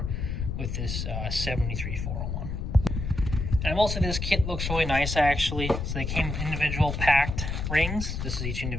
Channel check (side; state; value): left; noise; rumble, 3 dB below the sound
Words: with this 73401. And also this kit looks really nice actually. So they came with individual packed rings. This is each